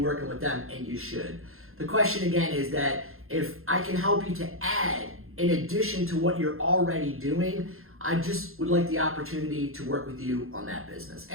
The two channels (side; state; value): left; late; 0.61 ms